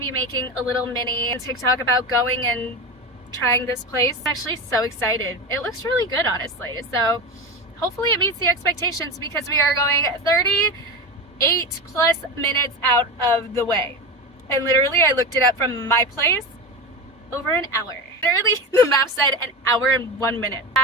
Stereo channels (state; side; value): normal; both; correlation 0.22